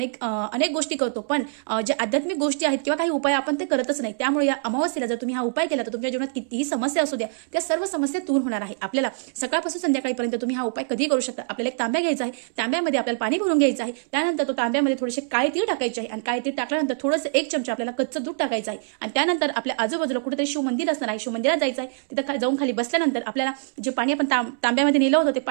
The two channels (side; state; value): left; silent; 62 dB below the other